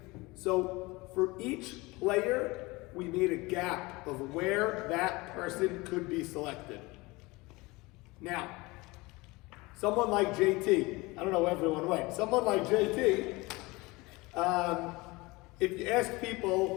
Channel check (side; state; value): right; quieter; 23.0 dB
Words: So for each player, we made a gap of where that person could be selected. Now, someone like JT, I don't know where everyone went, someone like JT, if you ask